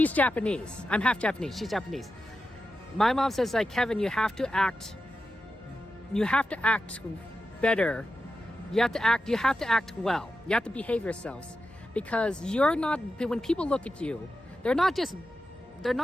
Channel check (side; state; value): both; normal; correlation 0.90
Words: Japanese. I'm half Japanese. She's Japanese. My mom says, like, Kevin, you have to act better. You have to act well. You have to behave yourselves. Because you're not, when people look at you, they're not just